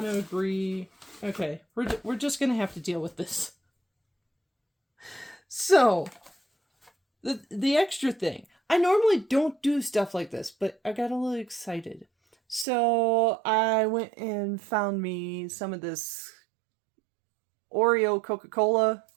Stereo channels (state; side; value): drops out; left; at 12.7 s